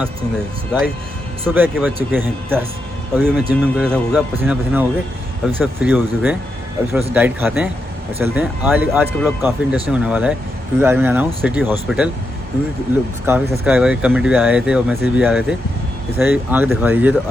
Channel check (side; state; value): both; normal; correlation 0.84